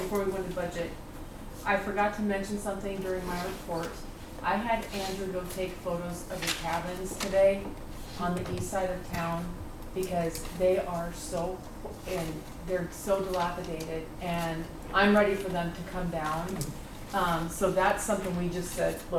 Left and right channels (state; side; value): identical; both; correlation 1.00